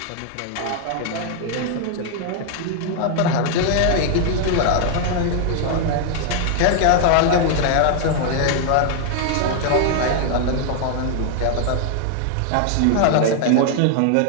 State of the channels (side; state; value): both; different; correlation 0.00